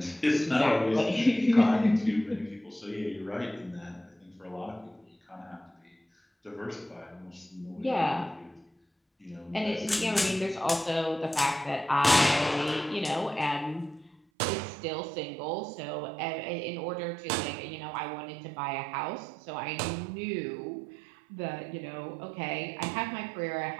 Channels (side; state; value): left; drops out; at 14.2 s